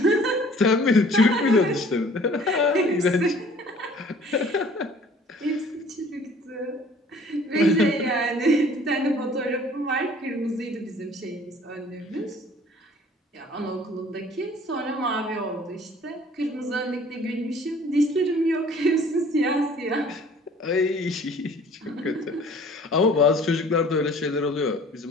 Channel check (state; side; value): normal; both; correlation 0.52